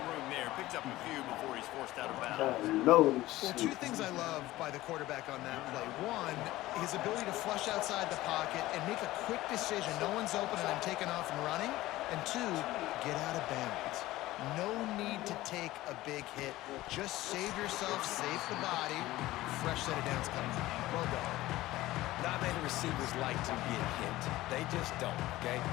room there. Picks up a few before he's forced out of bounds. Well, two things I love by the quarterback on that play. One, his ability to flush outside the pocket and make a quick decision. No one's open and I'm taking off and running. And two, get out of bounds. No need to take a big hit. Just save yourself, save the body. Fresh set of downs coming. Well done. Not many receivers like to get hit. They just don't, okay?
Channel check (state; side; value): quieter; right; 17.0 dB